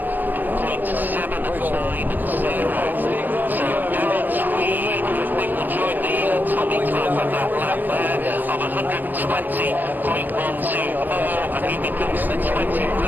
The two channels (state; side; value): late; left; 0.090 ms